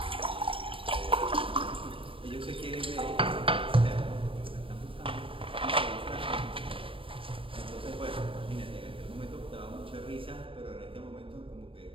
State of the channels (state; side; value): late; left; 0.26 ms